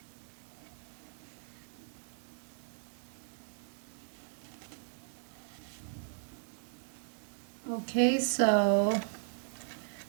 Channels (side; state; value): left; silent; 53 dB below the other